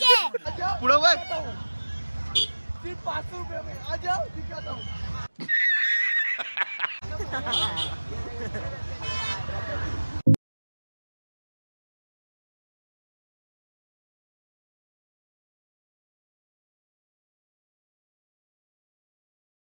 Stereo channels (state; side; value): inverted; both; correlation -1.00